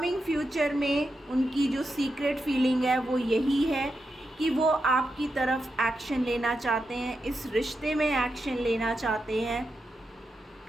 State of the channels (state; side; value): normal; both; correlation 0.87